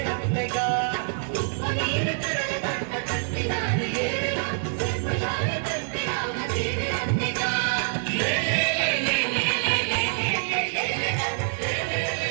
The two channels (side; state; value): left; silent; digital silence